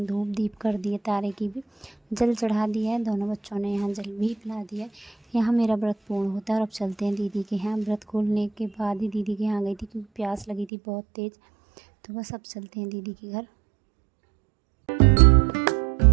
धूप दीप कर दिए, तारे की भी जल चढ़ा दिया है। दोनों बच्चों ने यहाँ जल भी पिला दिया है। यहाँ मेरा व्रत पूर्ण होता है और अब चलते हैं दीदी के यहाँ। व्रत खोलने के बाद ही दीदी के यहाँ गई थी क्योंकि प्यास लगी थी बहुत तेज़। तो बस अब चलते हैं दीदी के घर।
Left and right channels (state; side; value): drops out; left; at 10.7 s